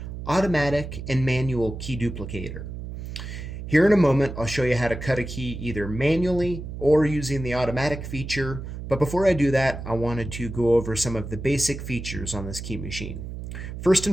automatic and manual key duplicator. Here in a moment, I'll show you how to cut a key either manually or using the automatic feature, but before I do that, I wanted to go over some of the basic features on this key machine. First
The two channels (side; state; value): right; noise; hum, 8 dB below the sound